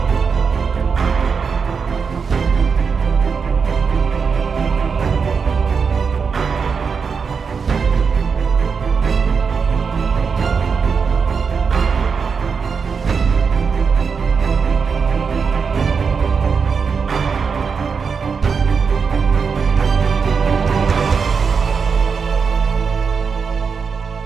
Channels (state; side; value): quieter; left; 5.7 dB